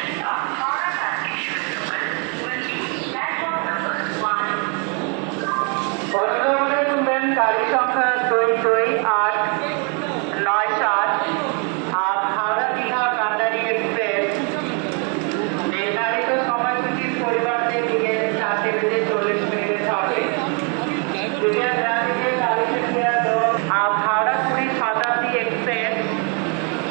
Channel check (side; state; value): left; quieter; 36.4 dB